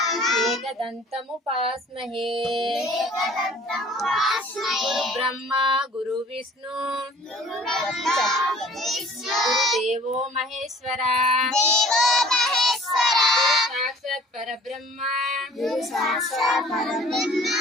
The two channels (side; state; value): both; normal; correlation 0.51